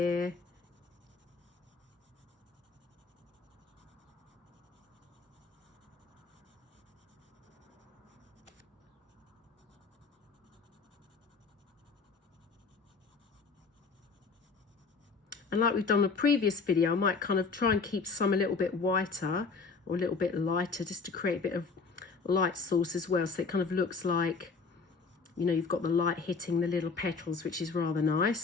And like we've done in a previous video, I might kind of try and keep some a little bit whiter or a little bit lighter just to create a bit of light source as well. So it kind of looks like, you know, you've got the light hitting the little petals, which is rather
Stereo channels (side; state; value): right; quieter; 4.7 dB